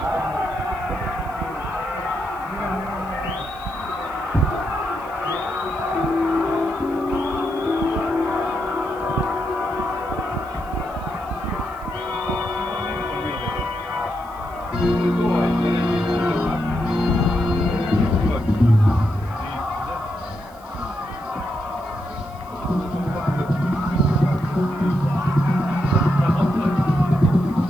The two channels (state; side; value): noise; right; hiss, 27 dB below the sound